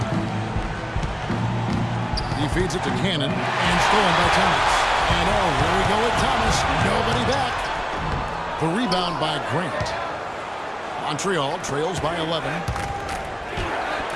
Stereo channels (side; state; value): both; identical; correlation 1.00